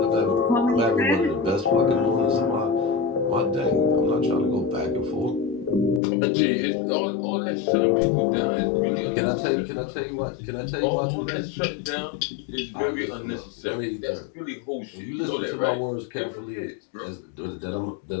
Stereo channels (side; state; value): right; drops out; at 6.0 s